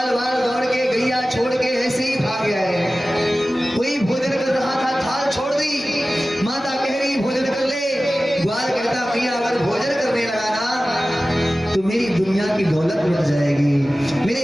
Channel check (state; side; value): normal; both; correlation 0.96